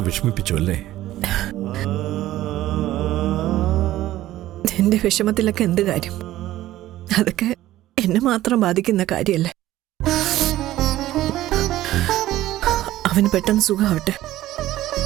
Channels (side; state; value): left; quieter; 14.8 dB